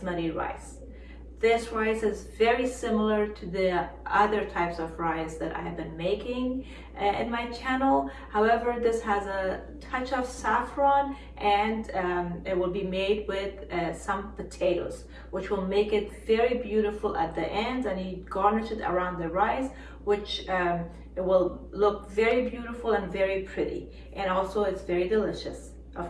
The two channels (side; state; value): both; identical; correlation 1.00